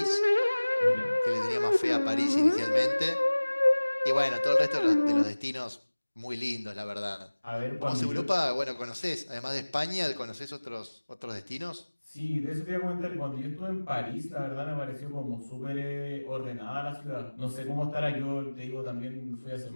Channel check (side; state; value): both; inverted; correlation -1.00